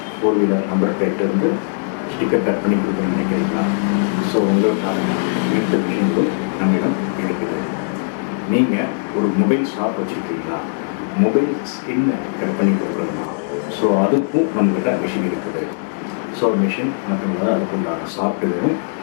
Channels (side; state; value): right; silent; digital silence